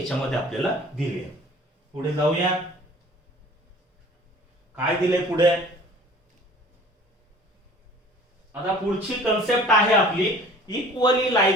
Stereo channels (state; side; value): normal; both; correlation 0.48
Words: आपल्याला दिली आहे. पुढे जाऊया, काय दिले पुढे? आता पुढची कन्सेप्ट आहे आपली equally